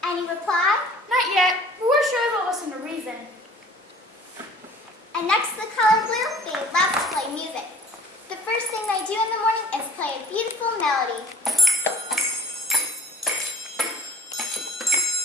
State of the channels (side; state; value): both; normal; correlation 0.50